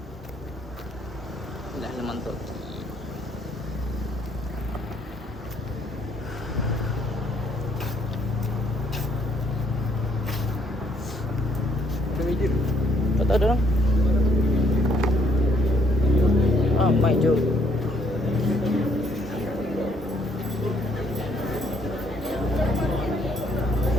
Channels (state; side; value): normal; both; correlation 0.68